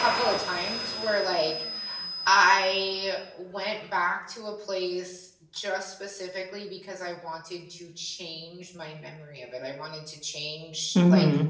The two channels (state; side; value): identical; both; correlation 1.00